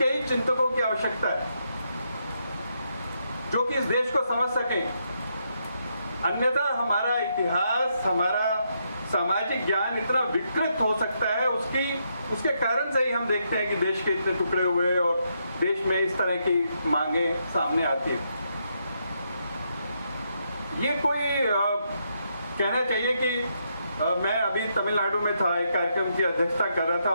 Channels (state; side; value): inverted; both; correlation -0.79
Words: ही चिंतकों की आवश्यकता है, जो कि इस देश को समझ सके। अन्यथा हमारा इतिहास, हमारा सामाजिक ज्ञान इतना विकृत हो सकता है, उसके कारण से ही हम देखते हैं कि देश के इतने टुकड़े हुए और देश में इस तरह की मांगे सामने आती है। ये कोई कहना चाहिए कि मैं अभी तमिलनाडु में था, एक कार्यक्रम की अध्यक्षता कर रहा था।